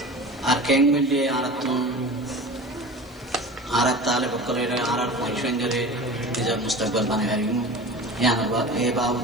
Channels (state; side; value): noise; left; hiss, 28 dB below the sound